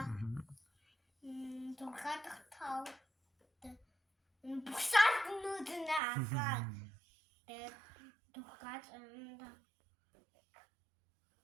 Дургаад тав бусаднууд байгаа. Тэгээд дургаад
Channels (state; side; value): drops out; left; at 6.0 s